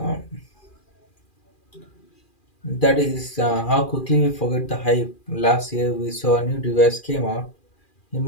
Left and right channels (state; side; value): late; right; 2.4 ms